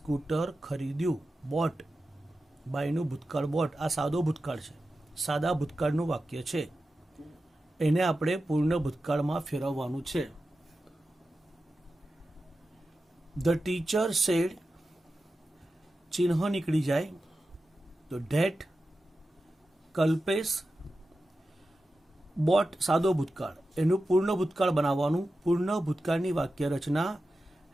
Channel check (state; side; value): normal; both; correlation 0.92